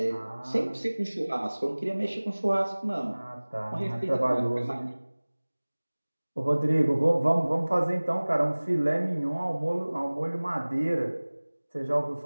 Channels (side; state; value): both; inverted; correlation -1.00